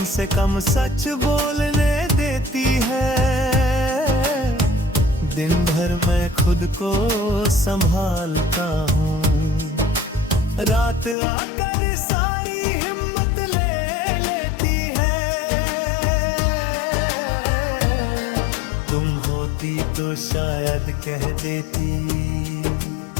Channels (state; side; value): drops out; right; at 11.2 s